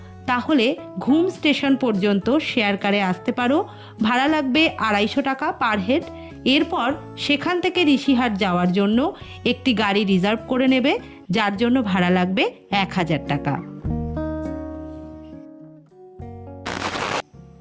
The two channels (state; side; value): identical; both; correlation 1.00